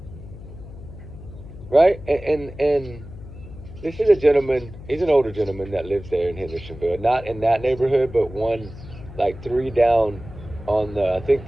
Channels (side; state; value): left; noise; hum, 15 dB below the sound